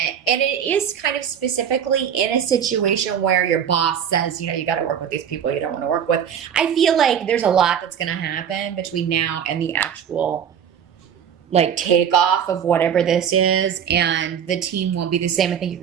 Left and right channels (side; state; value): left; quieter; 8.4 dB